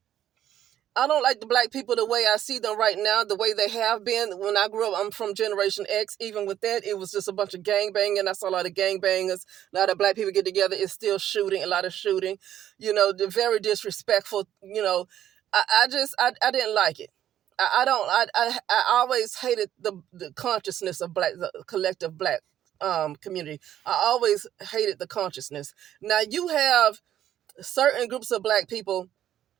the black people the way I see them right now, the way they have been. When I grew up, I'm from Generation X. Even with that, it was just a bunch of gang banging. I saw a lot of gang bangers. A lot of black people get together. It's still shooting, a lot of shooting. They're very disrespectful. I didn't like it. I always hated the consciousness of the collective black community. I always hated the consciousness. Now you have certain groups of black people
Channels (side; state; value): left; quieter; 11.3 dB